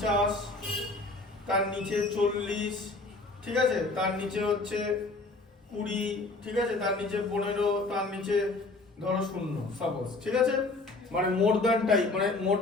তার নিচে 40, ঠিক আছে, তার নিচে হচ্ছে 20, ঠিক আছে, তার নিচে 15, তার নিচে ধরো 0, সাপোজ, ঠিক আছে, মানে মোর দ্যান টাইপ, মানে মোর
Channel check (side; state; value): right; quieter; 3.3 dB